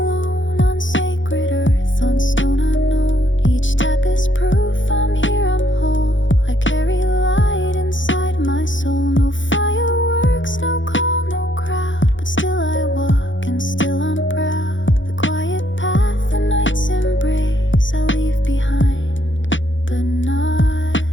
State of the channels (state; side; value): late; right; 0.56 ms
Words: on sacred earth, on stone unknown. Each step is proof I'm here, I'm whole. I carry light inside my soul. No fireworks, no call, no crowd, but still I walk and still I'm proud. The quiet path, the night's embrace, I leave behind, but not